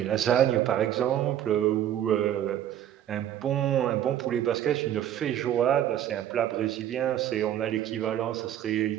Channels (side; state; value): left; quieter; 11.2 dB